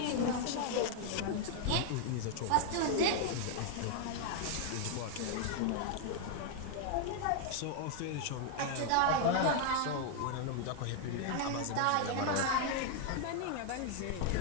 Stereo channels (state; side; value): different; both; correlation 0.00